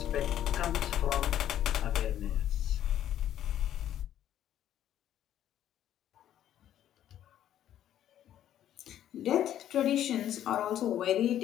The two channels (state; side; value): quieter; right; 11.3 dB